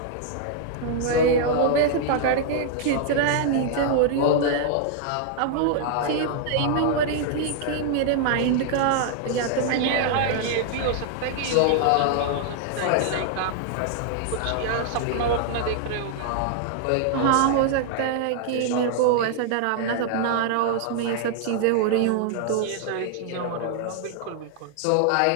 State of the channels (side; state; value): both; different; correlation 0.00